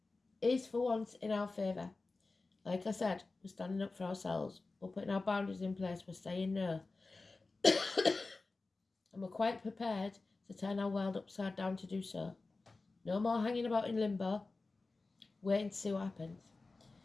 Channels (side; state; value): right; quieter; 3.6 dB